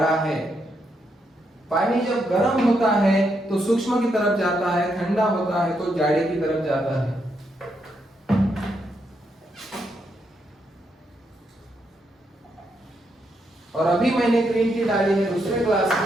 है। पानी जब गर्म होता है तो सूक्ष्म की तरफ जाता है, ठंडा होता है तो जाड़े की तरफ जाता है। और अभी मैंने ग्रीन टी डाली है दूसरे ग्लास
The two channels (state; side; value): normal; both; correlation 0.79